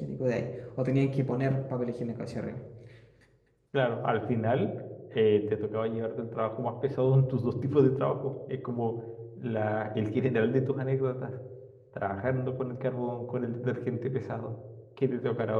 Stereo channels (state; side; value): identical; both; correlation 1.00